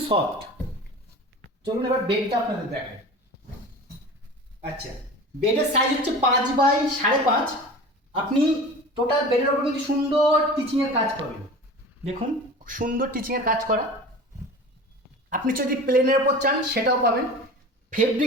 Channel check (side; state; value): both; normal; correlation 0.36